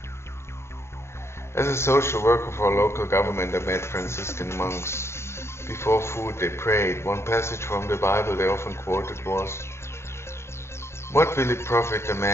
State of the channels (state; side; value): late; right; 0.13 ms